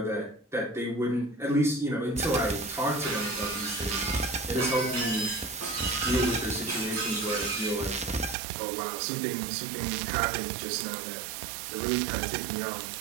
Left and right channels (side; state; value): left; drops out; at 8.3 s